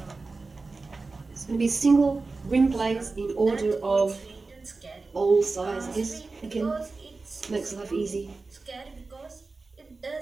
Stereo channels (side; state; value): left; quieter; 3.8 dB